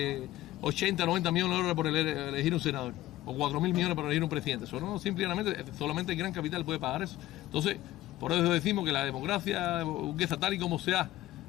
80, 90 millones de dólares por elegir un senador? O 4.000 millones para elegir un presidente. Eso no, simplemente, solamente el gran capital puede pagar eso. Entonces, por eso decimos que la democracia burguesa, tal y como se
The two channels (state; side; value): quieter; right; 15.7 dB